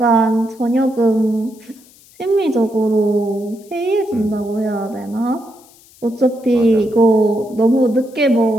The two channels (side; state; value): left; noise; hiss, 27 dB below the sound